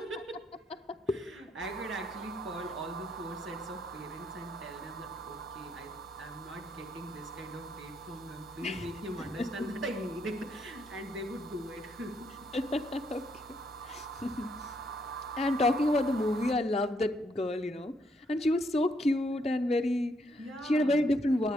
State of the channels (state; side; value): normal; both; correlation 0.74